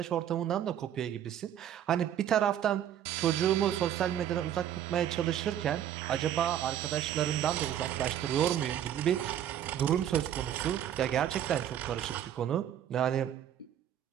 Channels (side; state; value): left; quieter; 10.5 dB